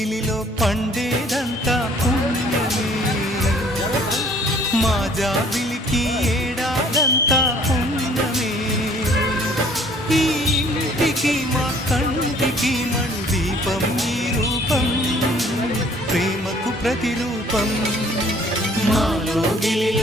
పండేదంతా పుణ్యమే మా జాబిలికి ఏడాదంతా పుణ్యమే ఈ ఇంటికి మా కంటికి మణి దీపం ఈ రూపం ప్రేమకు ప్రతిరూపం మాలో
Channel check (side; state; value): both; normal; correlation 0.57